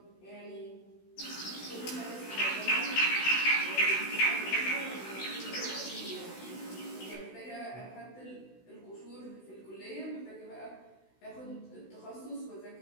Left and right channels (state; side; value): late; right; 16 ms